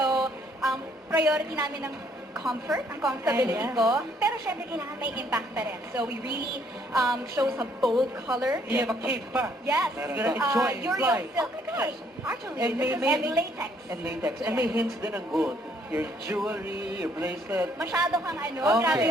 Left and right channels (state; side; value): normal; both; correlation 0.67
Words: priority namin ng comfort, ang comfortability ko. Pero syempre kailangan may impact pa rin. So we really show some bold color. You have a cape pa. Yes. You're gonna enjoy and fly. Oh my gosh. Actually, And this may is latex. And latex. And may hints din ng gold. Your jewelry, your bracelet. Masyado kang Okay. grabe